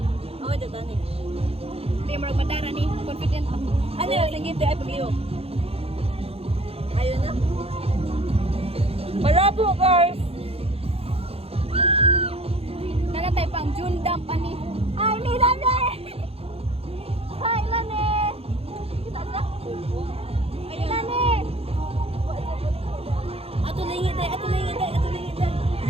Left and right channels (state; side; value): late; left; 0.29 ms